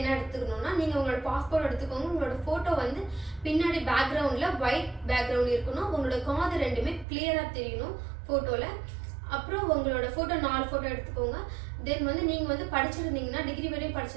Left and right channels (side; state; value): left; drops out; at 7.1 s